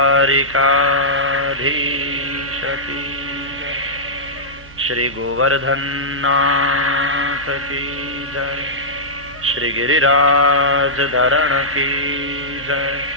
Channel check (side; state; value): both; normal; correlation -0.13